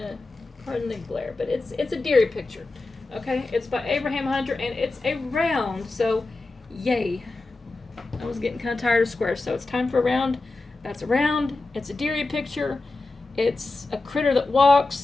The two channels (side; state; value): right; quieter; 3.3 dB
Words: Pardon the glare, but it's a deery picture. Okay, it's by Abraham Hunter, and it's a round, so yay. I was getting kind of tired of squares, so it's time for a round. That's a round. It's a deery picture. It's a critter that walks,